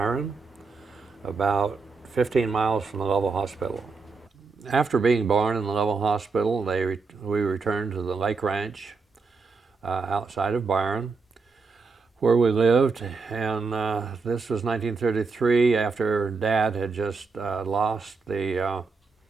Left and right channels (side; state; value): left; quieter; 4.6 dB